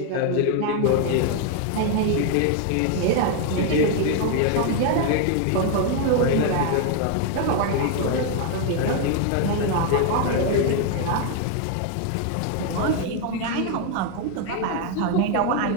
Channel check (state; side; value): different; both; correlation 0.01